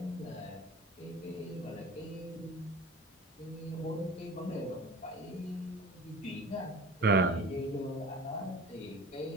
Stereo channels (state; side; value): normal; both; correlation 0.39